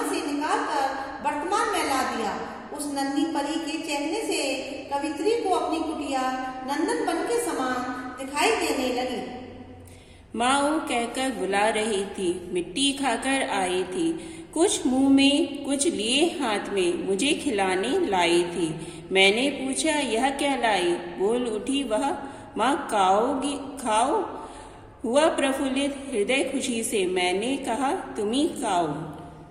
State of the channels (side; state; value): both; identical; correlation 1.00